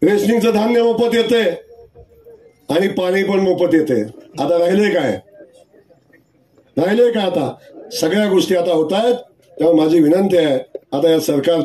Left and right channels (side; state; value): both; identical; correlation 1.00